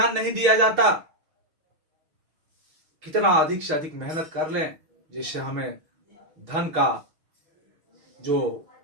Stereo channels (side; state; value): left; late; 6.3 ms